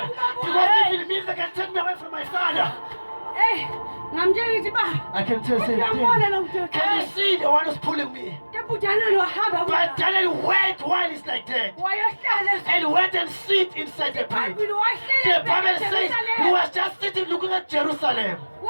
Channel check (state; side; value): inverted; both; correlation -1.00